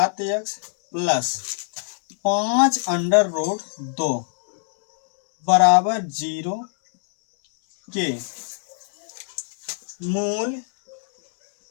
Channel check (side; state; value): right; silent; digital silence